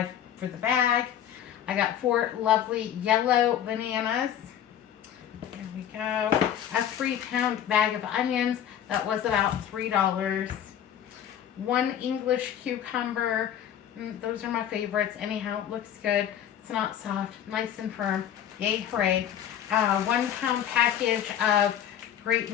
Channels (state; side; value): quieter; right; 10.0 dB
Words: for the bag. I got 4 lovely yellow bananas. There we go. A 3-pound bag of onions. That was about $3. 1 English cucumber. Those are my favorites. Anyhow, it looks good. It's not soft. Nice and firm. Yay, hooray. 1-pound package of Great